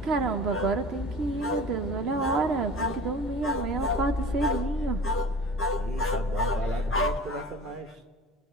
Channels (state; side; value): normal; both; correlation 0.40